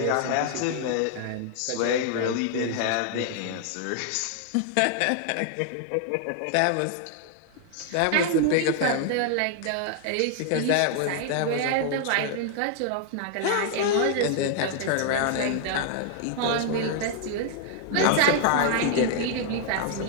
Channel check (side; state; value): both; different; correlation 0.00